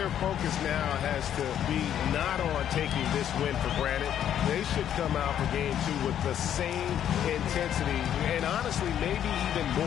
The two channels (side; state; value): right; quieter; 10.1 dB